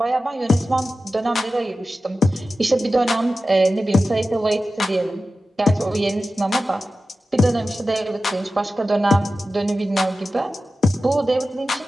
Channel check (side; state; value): both; normal; correlation 0.94